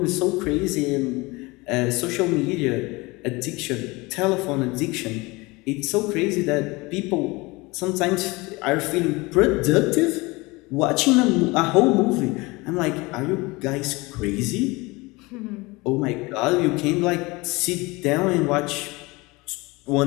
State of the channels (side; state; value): right; quieter; 23.7 dB